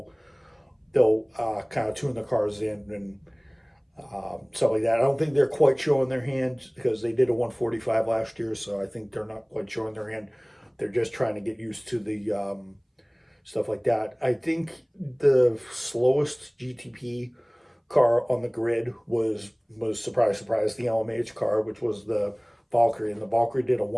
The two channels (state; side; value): identical; both; correlation 1.00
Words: kind of tune the cars in and stuff like that. I don't think they're quite showing their hand because they did a 145 last year, so I think they're not quite showing their hand. They're just trying to get used to the stuff like that. I think the slowest GTP car on the grid was surprise, the LMH car, which was the Valkyrie, and the Valkyrie did a